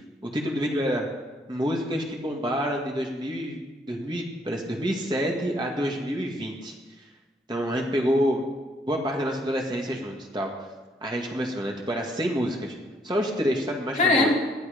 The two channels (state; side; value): normal; both; correlation 0.68